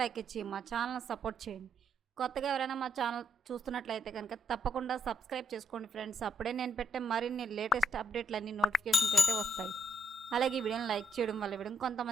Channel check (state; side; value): normal; both; correlation 0.74